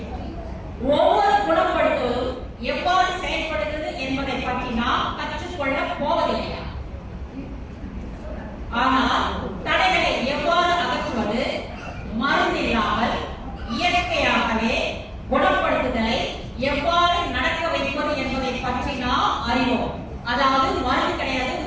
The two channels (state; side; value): identical; both; correlation 1.00